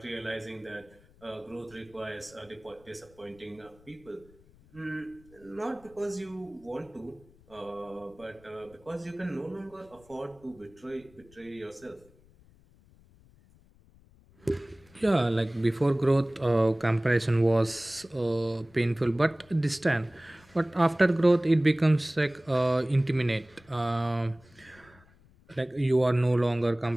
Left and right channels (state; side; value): noise; left; rumble, 28 dB below the sound